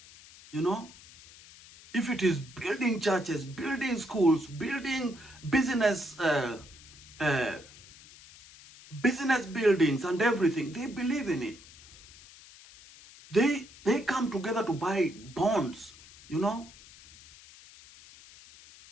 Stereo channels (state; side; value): noise; left; hiss, 21 dB below the sound